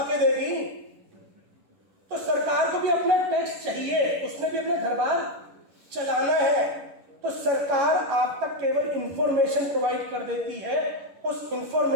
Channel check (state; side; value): late; left; 11 ms